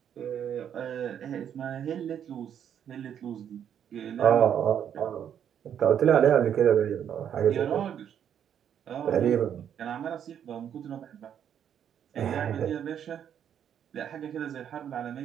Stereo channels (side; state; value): left; quieter; 9.1 dB